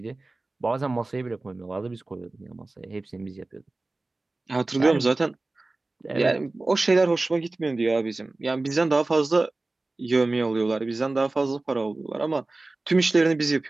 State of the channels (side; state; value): left; quieter; 3.1 dB